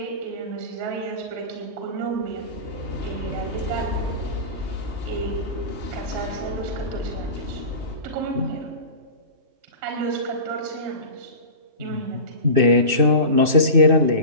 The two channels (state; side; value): late; left; 2.6 ms